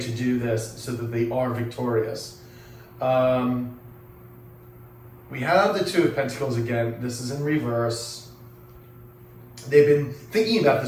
do this so that they are victorious. We have the Two of Pentacles again. This is in reverse. They've been thinking about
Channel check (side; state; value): both; identical; correlation 1.00